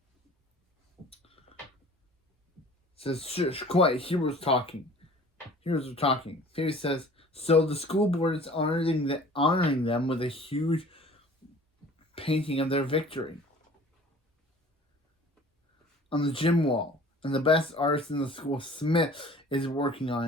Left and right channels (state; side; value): normal; both; correlation 0.48